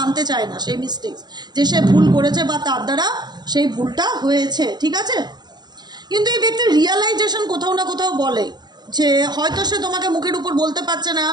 চায় না সেই মিস্টেক্স, যে সে ভুল করেছে বা তার দ্বারা সেই ভুলটা হয়েছে, ঠিক আছে। কিন্তু এই ব্যক্তির রিয়ালাইজেশন কোথাও না কোথাও বলে যে হয়তো সে তোমাকে মুখের উপর বলতে পারছে না,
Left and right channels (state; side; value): late; left; 0.20 ms